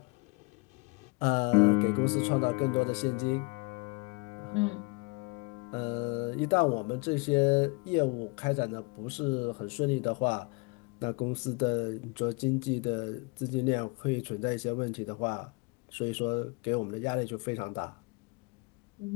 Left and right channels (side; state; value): right; quieter; 28.7 dB